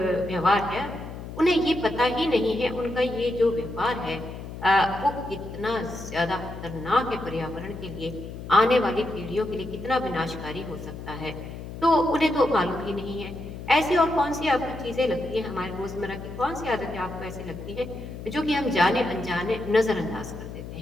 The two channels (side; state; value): left; noise; hum, 10 dB below the sound